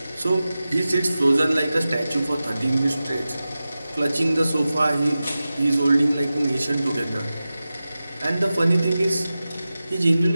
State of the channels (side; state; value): both; inverted; correlation -0.95